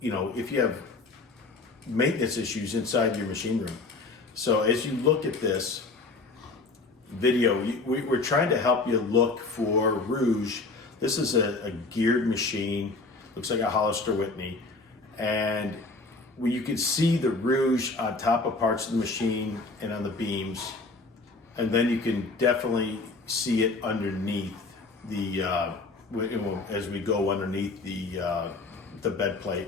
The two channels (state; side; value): quieter; right; 3.6 dB